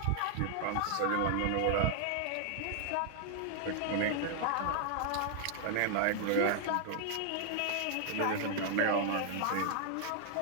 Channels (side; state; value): both; different; correlation -0.01